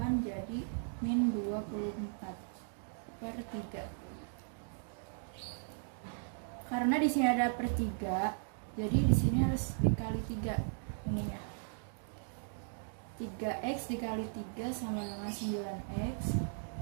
jadi min 24 per 3. Karena di sini ada per 3, jadi di sini harus dikali 3 ininya. 3x dikali 3 sama dengan 9x.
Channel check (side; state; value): left; silent; digital silence